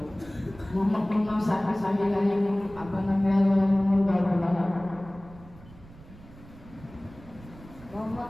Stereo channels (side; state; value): right; noise; rumble, 20 dB below the sound